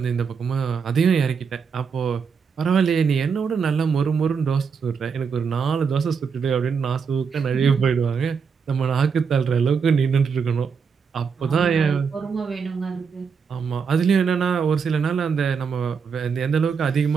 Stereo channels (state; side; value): quieter; left; 6.0 dB